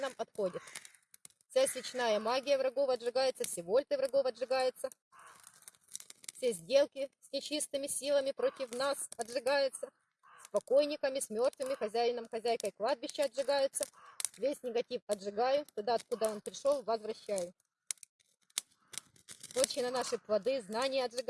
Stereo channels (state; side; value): identical; both; correlation 1.00